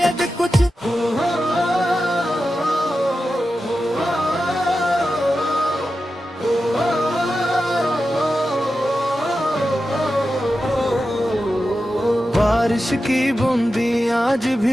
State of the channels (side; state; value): both; normal; correlation 0.91